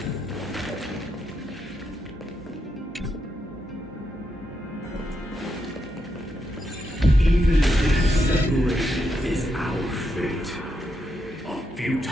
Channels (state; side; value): normal; both; correlation 0.82